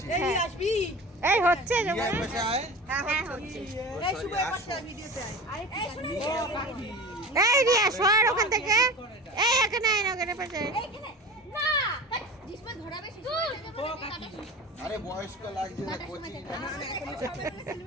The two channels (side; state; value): both; normal; correlation 0.34